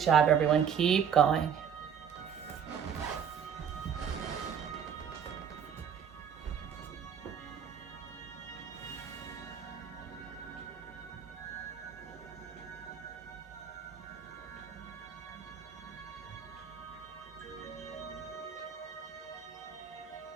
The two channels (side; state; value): left; quieter; 7.9 dB